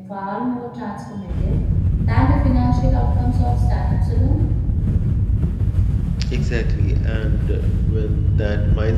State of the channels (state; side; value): identical; both; correlation 1.00